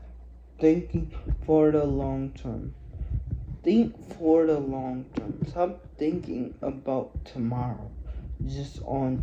thinking for the long term. Think for the long term. Stop thinking about tomorrow, just on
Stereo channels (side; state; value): both; identical; correlation 1.00